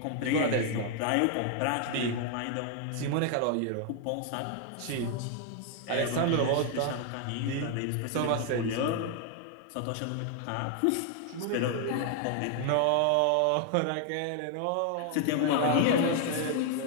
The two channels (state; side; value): different; both; correlation 0.00